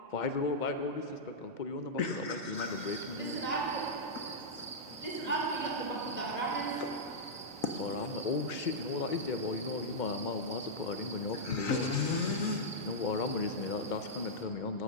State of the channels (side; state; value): both; normal; correlation -0.09